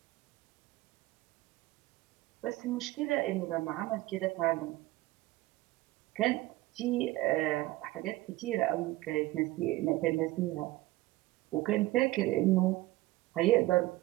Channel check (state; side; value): quieter; left; 17.9 dB